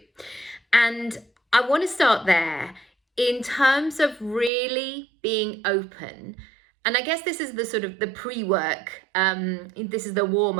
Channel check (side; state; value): left; drops out; at 4.5 s